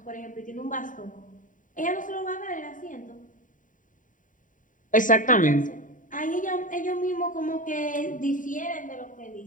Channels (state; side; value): late; right; 0.38 ms